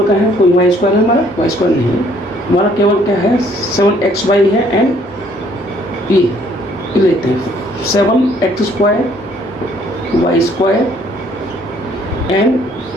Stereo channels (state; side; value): normal; both; correlation 0.62